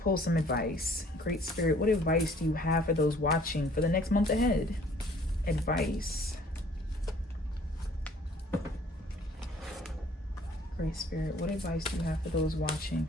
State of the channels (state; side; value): normal; both; correlation 0.55